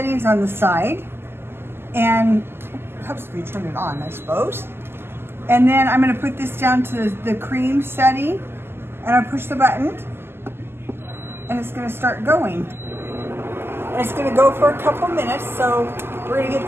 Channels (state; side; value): late; left; 0.12 ms